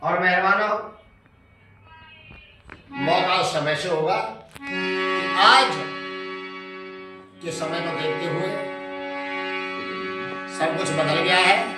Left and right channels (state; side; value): identical; both; correlation 1.00